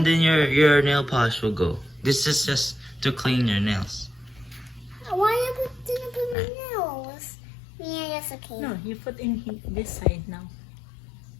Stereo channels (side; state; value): right; drops out; at 6.4 s